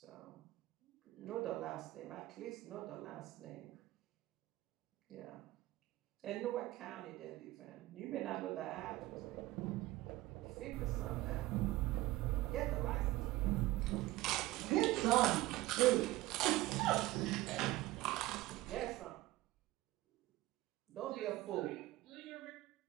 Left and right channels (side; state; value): left; quieter; 17.6 dB